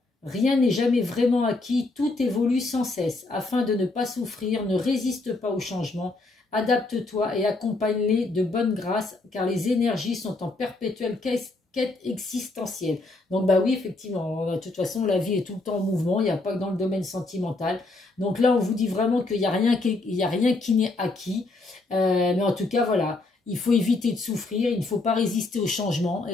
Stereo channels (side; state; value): right; quieter; 3.2 dB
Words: Rien n'est jamais vraiment acquis, tout évolue sans cesse. Afin de ne pas souffrir, ne résiste pas au changement, adapte-toi et accompagne-les de bonne grâce, car les énergies sont en perpétuelle quête existentielle. Donc bah oui, effectivement, de toute façon, la vie est tout le temps en mouvement, il n'y a pas que dans le domaine sentimental. Donc là, on vous dit vraiment qu'il n'y a rien qui n'est acquis. Mais en tout cas, voilà. Il faut éviter de souffrir, il ne faut pas résister au changement,